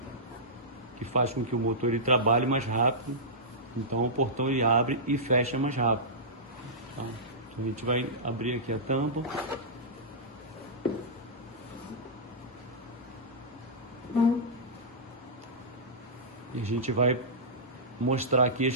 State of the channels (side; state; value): both; normal; correlation -0.15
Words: que faz com que o motor ele trabalhe mais rápido, então o portão ele abre e fecha mais rápido. Tá? Então a gente vai abrir aqui a tampa. E a gente vai mostrar aqui as